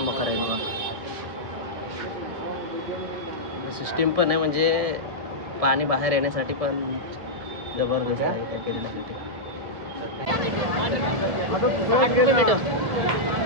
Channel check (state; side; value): late; left; 1.7 ms